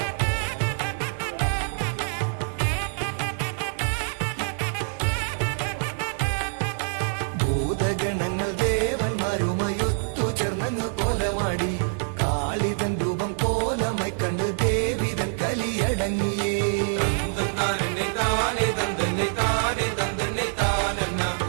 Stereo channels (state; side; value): silent; left; digital silence